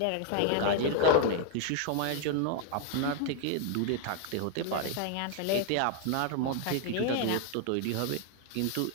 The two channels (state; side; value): different; both; correlation 0.00